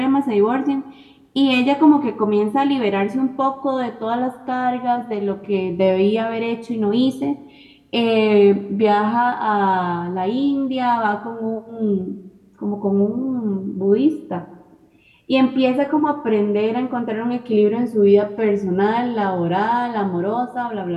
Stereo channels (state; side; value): identical; both; correlation 1.00